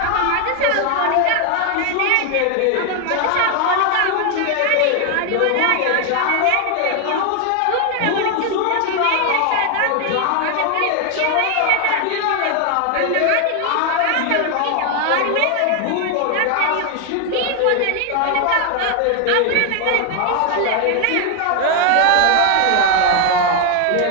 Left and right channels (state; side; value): different; both; correlation 0.00